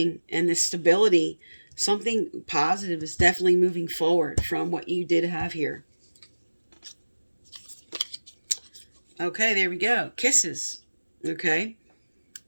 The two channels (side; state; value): both; inverted; correlation -1.00